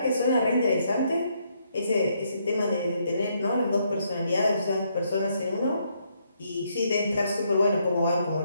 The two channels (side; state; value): both; inverted; correlation -0.74